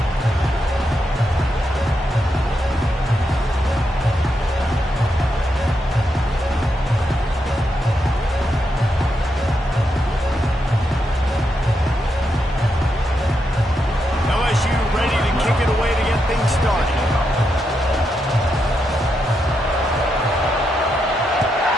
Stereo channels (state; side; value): normal; both; correlation 0.83